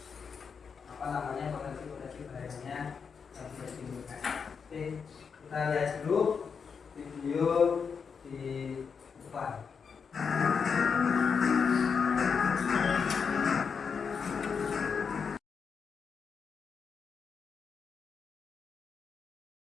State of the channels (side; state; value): right; quieter; 6.1 dB